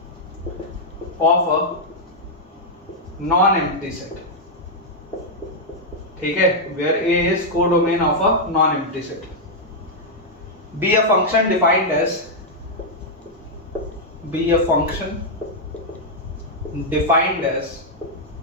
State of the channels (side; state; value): both; normal; correlation -0.04